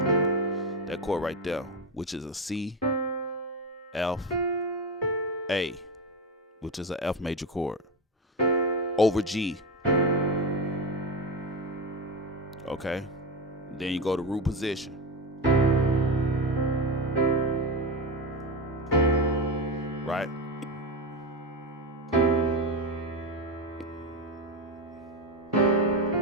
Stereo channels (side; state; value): both; normal; correlation 0.17